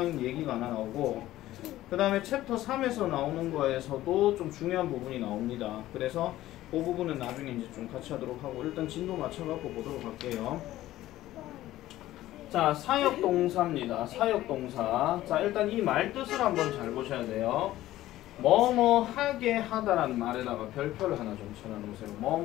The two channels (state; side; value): quieter; right; 15.0 dB